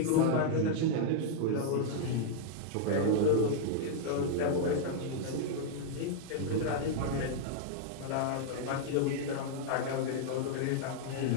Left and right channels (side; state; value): both; different; correlation -0.01